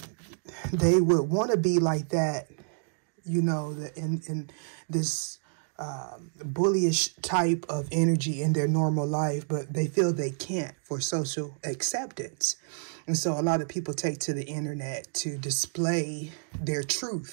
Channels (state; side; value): silent; left; digital silence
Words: They would want to be like that, you know, in this bullyish type of energy in their normal life, but they feel they can't for social acceptance. And so a lot of people take to the internet to display their